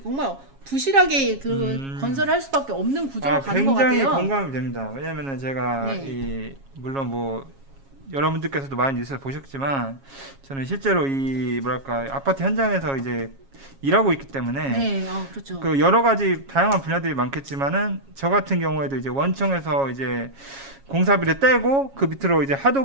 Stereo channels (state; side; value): late; left; 7.3 ms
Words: 부실하게 그 건설을 할 수밖에 없는 구조가 가는 것 굉장히 같아요. 공감이 됩니다. 왜냐면은 제가 네. 물론 뭐 여러분들께서도 많이 뉴스를 보셨지만 저는 실제로 이 뭐랄까 아파트 현장에서 이제 일하고 있기 때문에 네, 그렇죠. 그 여러 가지 다양한 분야들이 많겠지만은 저 같은 경우에도 이제 원청에서 이제 공사비를 떼고 그 밑으로 이제